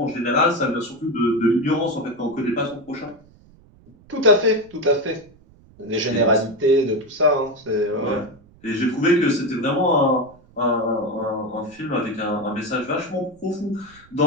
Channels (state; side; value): noise; right; rumble, 27 dB below the sound